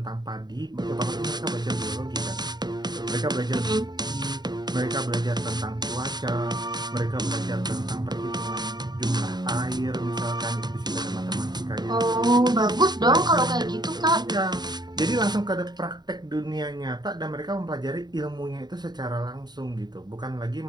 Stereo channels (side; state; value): left; late; 0.20 ms